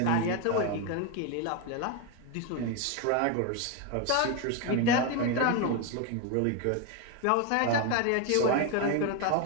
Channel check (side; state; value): both; different; correlation 0.02